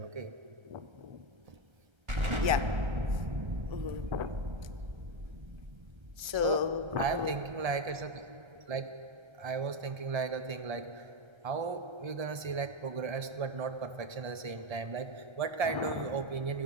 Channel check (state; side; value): late; left; 1.3 ms